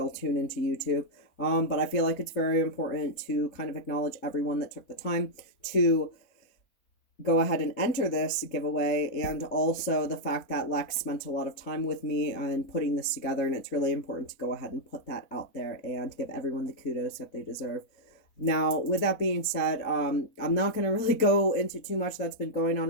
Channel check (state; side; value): late; right; 4.0 ms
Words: tune into YouTube. But I feel like it's very important to kind of acknowledge everyone that took the time to go ahead and enter this giveaway, and also the fact that Lex spent a lot of time with me and putting this together, and it's really important to go ahead and put that out there and give everyone the kudos that they deserve. Now, with that being said, I'm not going to really go into too much that's been going